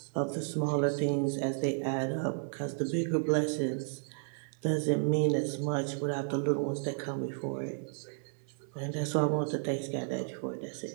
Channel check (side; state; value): left; silent; 56 dB below the other